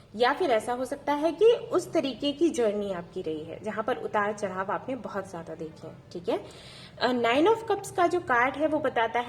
या फिर ऐसा हो सकता है कि उस तरीके की जर्नी आपकी रही है जहां पर उतार चढ़ाव आपने बहुत ज्यादा देखे हैं। ठीक है, 9 ऑफ कप्स का जो कार्ड है वो बताता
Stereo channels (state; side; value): identical; both; correlation 1.00